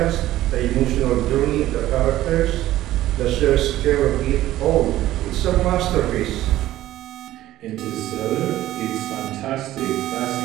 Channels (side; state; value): left; quieter; 14.7 dB